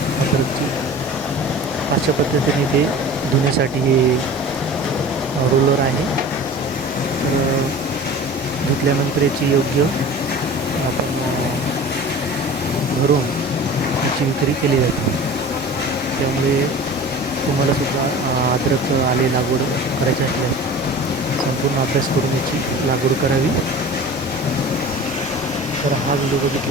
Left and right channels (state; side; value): normal; both; correlation 0.39